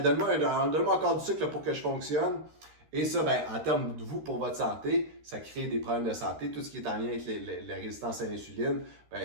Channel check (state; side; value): late; left; 13 ms